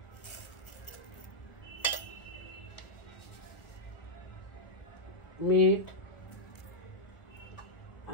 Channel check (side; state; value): right; late; 1.6 ms